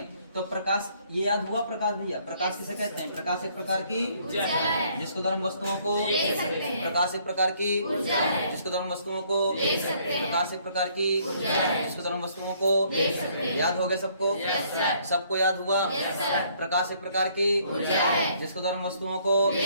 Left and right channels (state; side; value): inverted; both; correlation -0.64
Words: तो प्रकाश ये याद हुआ? प्रकाश भैया प्रकाश किसे कहते हैं? प्रकाश एक प्रकार की जिसके द्वारा हम वस्तुओं को प्रकाश एक प्रकार की जिसके द्वारा हम वस्तुओं को प्रकाश एक प्रकार की जिसके द्वारा हम वस्तुओं को याद हो गया सबको? सबको याद हुआ? प्रकाश एक प्रकार की जिसके द्वारा हम वस्तुओं को